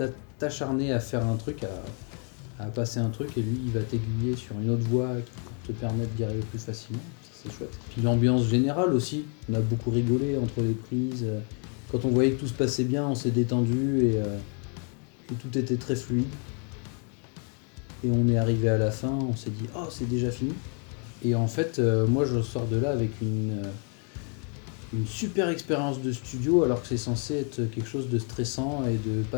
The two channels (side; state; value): right; quieter; 39.5 dB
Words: t'acharner à faire un truc, à passer un truc, et lui il va t'aiguiller sur une autre voie pour te permettre d'y arriver plus facilement. Ça, c'est chouette. Puis l'ambiance générale aussi, on a beaucoup rigolé entre les prises. Quand on voyait que tout se passait bien, on s'est détendu et tout était très fluide. Et on est arrivé à la fin, on s'est dit « Oh, c'est déjà fini !» Et en fait, moi je sors de là avec une super expérience de studio, alors que c'est censé être quelque chose de stressant et de